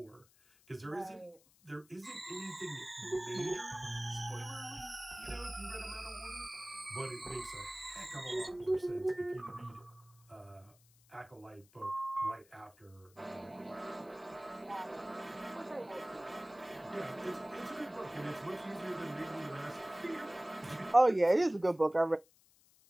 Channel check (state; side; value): noise; left; hiss, 28 dB below the sound